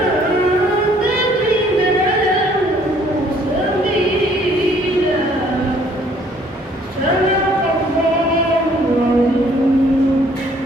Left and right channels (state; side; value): normal; both; correlation 0.61